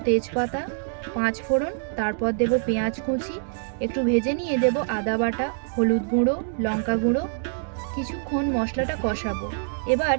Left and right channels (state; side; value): silent; left; digital silence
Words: তেজপাতা, 5 ফোড়ন, তারপর দেব পেঁয়াজ কুচি, একটু ভেজে নিয়ে দেব আদা বাটা, হলুদ গুঁড়ো, লঙ্কা গুঁড়ো। কিছুক্ষণ মশলাটা কষাবো। এবার